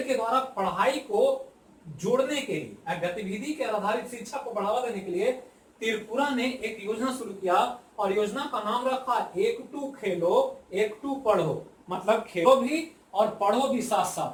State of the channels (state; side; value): identical; both; correlation 1.00